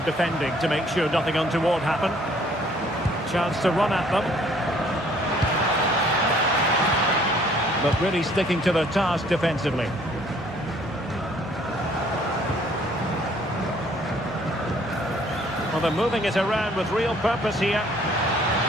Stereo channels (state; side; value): normal; both; correlation 0.60